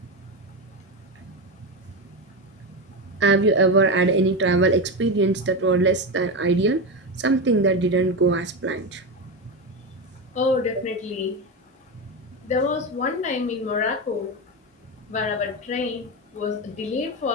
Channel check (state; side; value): normal; both; correlation 0.16